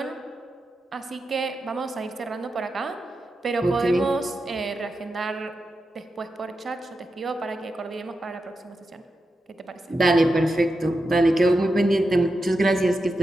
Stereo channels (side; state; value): both; normal; correlation 0.89